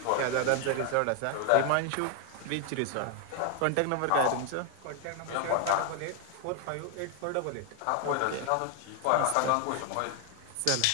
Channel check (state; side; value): different; both; correlation 0.00